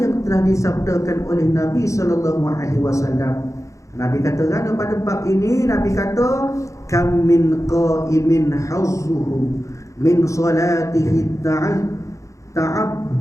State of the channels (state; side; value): late; right; 0.15 ms